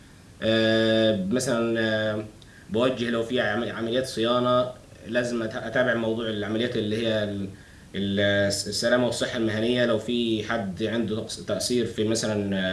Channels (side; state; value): both; identical; correlation 1.00